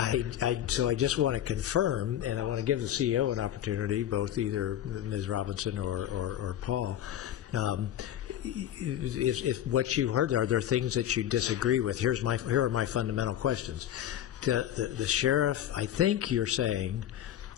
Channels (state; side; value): quieter; right; 11.4 dB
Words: I just want to confirm, and I want to give the CEO an opportunity, both either Ms. Robinson or Paul. If what you heard, are there things that you disagree with? Here are my fundamental questions. The sheriff, I think you're saying